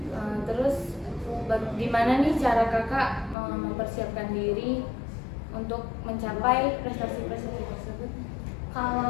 Terus gimana nih cara Kakak mempersiapkan diri untuk mencapai prestasi-prestasi tersebut?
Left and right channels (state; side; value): drops out; right; at 3.4 s